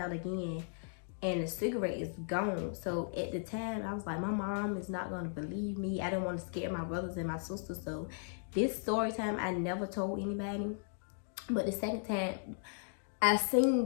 again, and the cigarette is gone. So at the time, I was like, my mom is not going to believe me. I didn't want to scare my brothers and my sisters. So this story time, I never told anybody. But the second time I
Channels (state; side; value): silent; right; digital silence